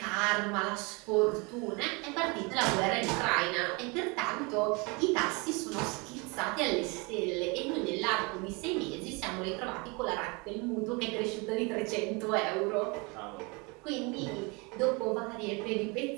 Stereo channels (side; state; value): left; quieter; 28.8 dB